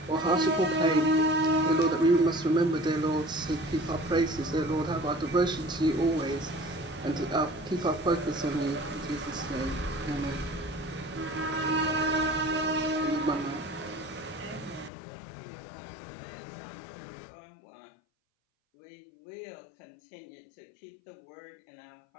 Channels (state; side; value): drops out; right; at 14.9 s